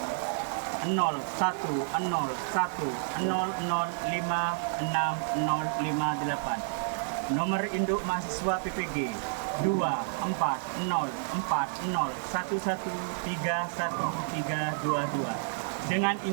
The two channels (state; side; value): silent; left; 58 dB below the other